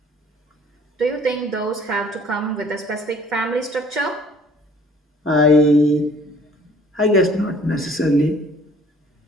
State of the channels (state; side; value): normal; both; correlation 0.55